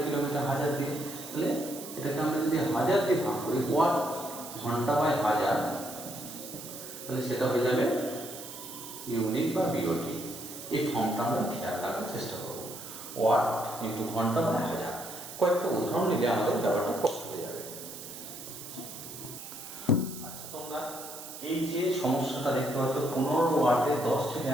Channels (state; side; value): noise; right; hiss, 11 dB below the sound